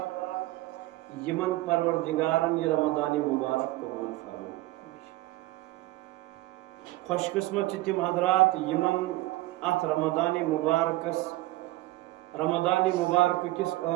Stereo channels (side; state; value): left; quieter; 18.4 dB